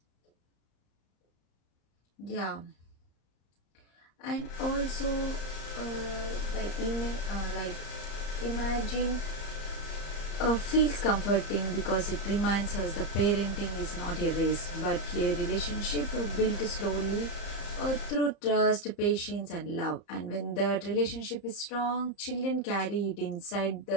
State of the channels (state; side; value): late; right; 34 ms